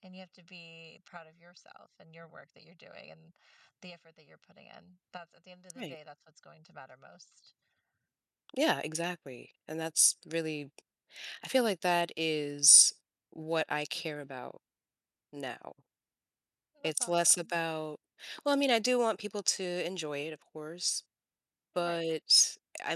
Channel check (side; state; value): both; identical; correlation 1.00